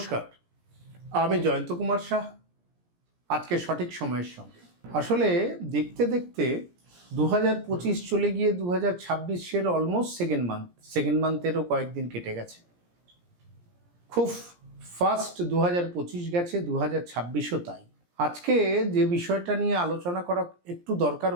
আমি জয়ন্ত কুমার শাহ। আজকে সঠিক সময়ের সঙ্গে আসলে দেখতে দেখতে 2025 চলে গিয়ে 2026-এর অলমোস্ট সেকেন্ড মান্থেরও কয়েকদিন কেটে গেছে। খুব ফাস্ট 2025 গেছে, 2026ও তাই। আজকে যে বিষয়টা নিয়ে আলোচনা করা একটু দরকার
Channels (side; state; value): left; late; 17 ms